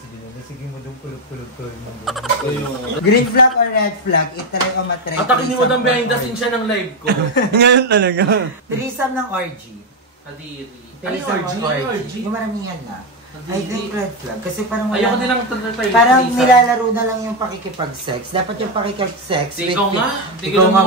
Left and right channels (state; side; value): normal; both; correlation 0.07